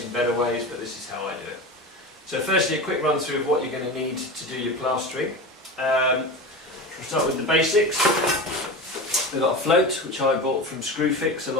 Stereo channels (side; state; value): both; normal; correlation 0.27